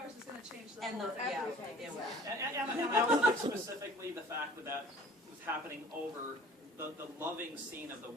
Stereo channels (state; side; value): normal; both; correlation 0.50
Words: is going to change the And whole the, yeah, everything. it will. And I also think specifically the fact that that was happening over the loving scene of the